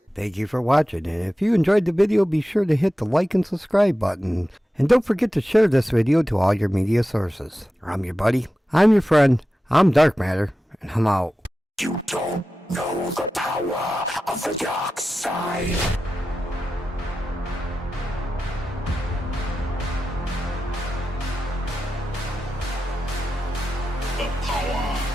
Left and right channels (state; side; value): normal; both; correlation 0.93